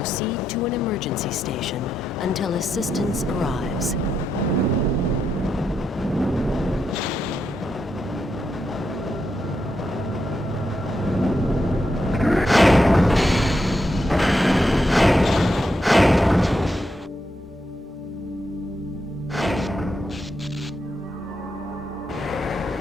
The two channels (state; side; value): normal; both; correlation 0.83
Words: to an emergency station until assistance arrives.